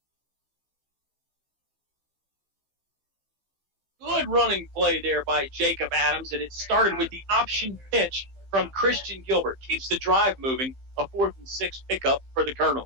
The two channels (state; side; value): late; left; 15 ms